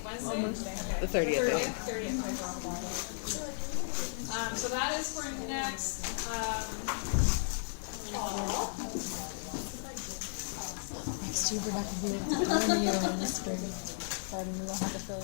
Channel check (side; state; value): right; silent; digital silence